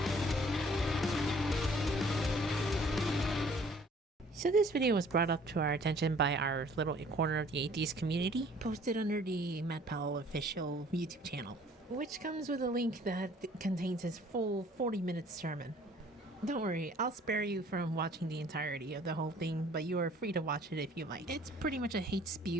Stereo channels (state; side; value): normal; both; correlation 0.55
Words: So this video was brought up to our attention by our little corner of the atheist community, posted under the Matt Powell official YouTube channel, which comes with a link that contains his full 40-minute sermon. Don't worry, I'll spare you from watching the entirety of the whole thing, but you are free to watch it if you like. It's pretty much a hate